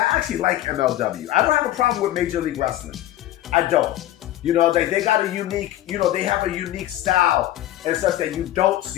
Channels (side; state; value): right; quieter; 14.2 dB